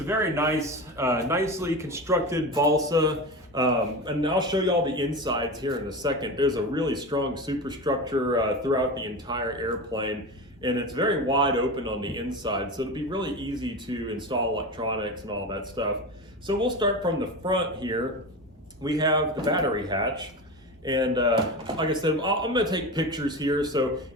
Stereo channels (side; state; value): both; normal; correlation 0.25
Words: very nice, nicely constructed balsa, and I'll show y'all the insides here in a second. There's a really strong superstructure throughout the entire airplane, and it's very wide open on the inside, so it'll be really easy to install electronics and all that stuff. So we'll start from the front here. We have the battery hatch, and like I said, I'm going to take pictures here,